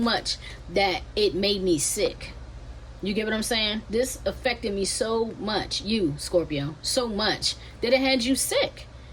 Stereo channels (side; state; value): both; identical; correlation 1.00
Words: that it made me sick. You get what I'm saying? This affected me so much, you Scorpio, so much that it had you sick.